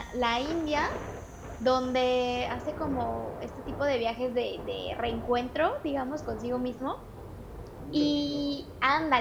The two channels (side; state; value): both; identical; correlation 1.00